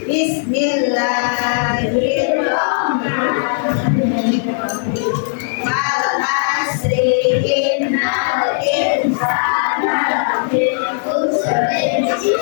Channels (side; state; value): right; silent; digital silence